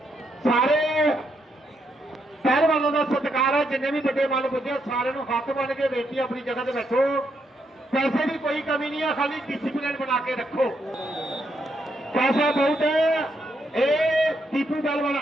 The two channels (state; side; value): normal; both; correlation 0.78